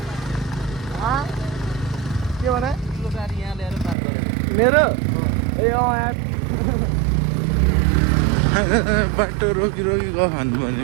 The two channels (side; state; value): left; drops out; at 4.0 s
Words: के भने गाडी यहाँ ल्याएर पार गरेको मेरो ए यार बाटो रोकी रोकी गयो भन्नु